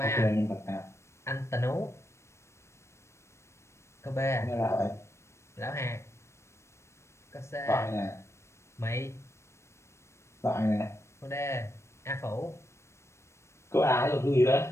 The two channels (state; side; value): late; right; 0.13 ms